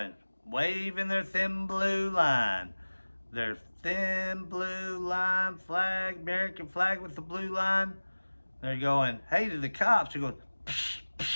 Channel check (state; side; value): inverted; both; correlation -1.00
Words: waving their thin blue line. Their thin blue line flag, American flag with the blue line. They're going, hey to the cops. They're going, psh,